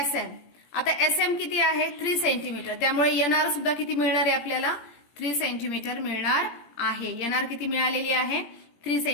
आता SM किती आहे, 3 सेंटीमीटर, त्यामुळे NR सुद्धा किती मिळणार आहे आपल्याला, 3 सेंटीमीटर मिळणार आहे. NR किती मिळालेली आहे, 3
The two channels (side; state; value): right; late; 18 ms